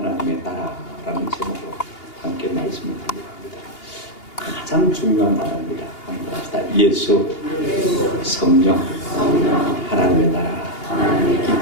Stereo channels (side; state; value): right; late; 2.8 ms